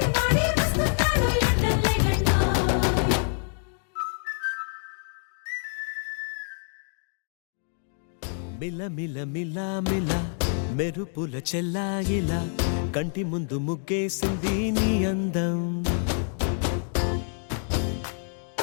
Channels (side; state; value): right; silent; 60 dB below the other